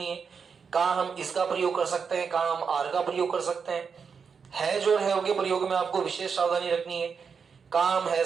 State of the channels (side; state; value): left; quieter; 6.0 dB